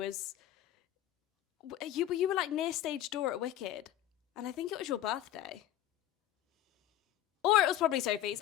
you were like near stage door at Wicked, and I think it was your birthday. Or it was probably Sophie's.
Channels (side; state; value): right; quieter; 12.5 dB